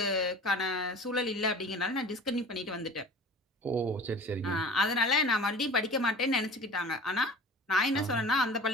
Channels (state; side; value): normal; both; correlation 0.40